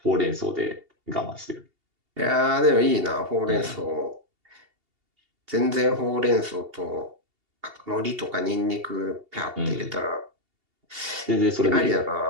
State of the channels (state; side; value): late; left; 2.8 ms